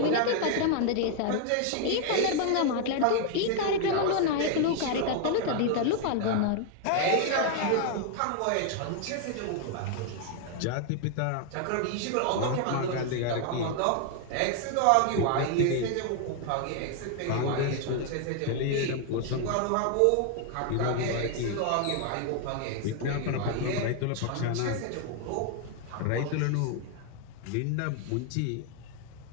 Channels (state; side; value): different; both; correlation 0.00